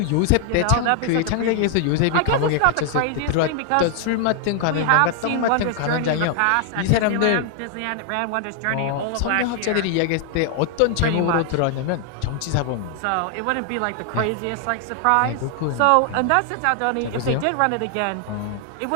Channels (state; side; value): different; both; correlation 0.00